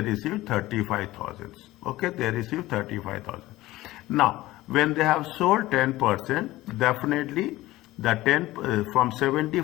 35,000. Okay, they received 35,000. Now, when they have sold 10%, definitely the 10 from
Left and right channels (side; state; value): right; quieter; 17.3 dB